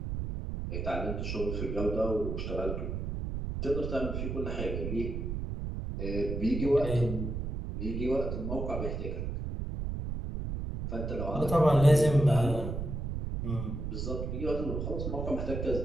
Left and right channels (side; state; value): right; noise; rumble, 3 dB below the sound